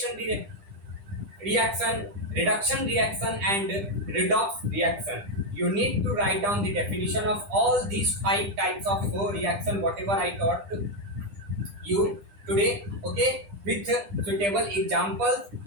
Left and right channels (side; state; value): left; late; 10 ms